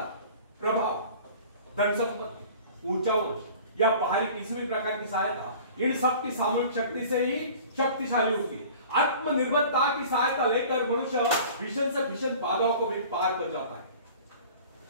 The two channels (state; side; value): inverted; both; correlation -0.45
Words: प्रभाव, धन संपत्ति, ऊंचा वंश या बाहरी किसी भी प्रकार की सहायता, इन सब की सामूहिक शक्ति से ही शक्तिशाली होती है। आत्मनिर्भरता की सहायता लेकर मनुष्य भीषण से भीषण बाधाओं को भी पार कर जाता है,